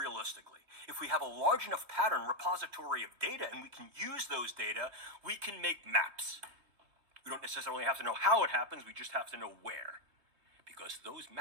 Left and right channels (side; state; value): left; late; 3.3 ms